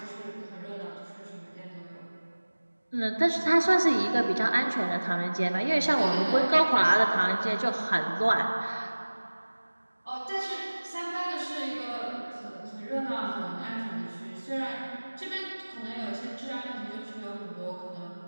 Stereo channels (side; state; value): both; inverted; correlation -1.00